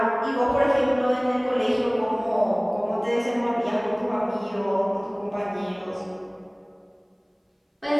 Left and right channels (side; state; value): both; identical; correlation 1.00